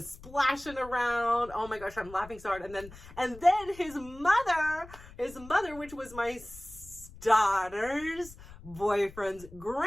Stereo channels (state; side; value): noise; left; rumble, 18 dB below the sound